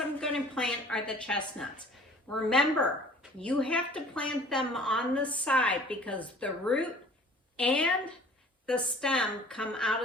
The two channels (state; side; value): normal; both; correlation 0.50